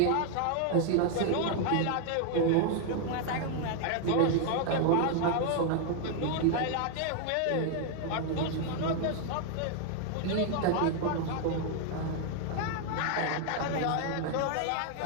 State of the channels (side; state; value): both; different; correlation 0.00